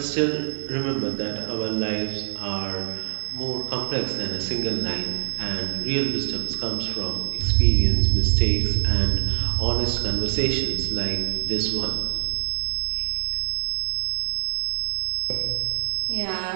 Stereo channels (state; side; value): silent; left; digital silence